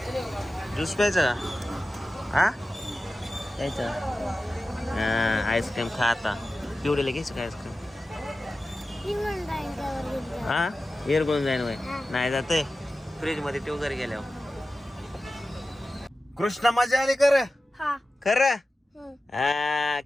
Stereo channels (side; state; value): both; normal; correlation 0.94